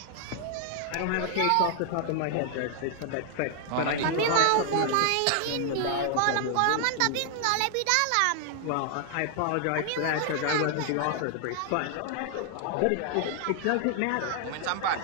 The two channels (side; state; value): both; different; correlation 0.00